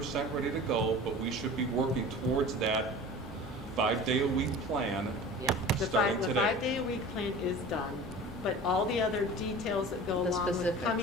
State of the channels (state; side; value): normal; both; correlation 0.38